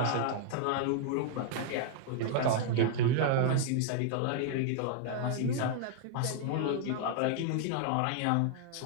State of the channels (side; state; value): both; different; correlation 0.00